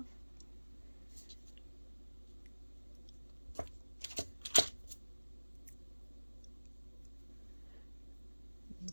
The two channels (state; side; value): inverted; both; correlation -1.00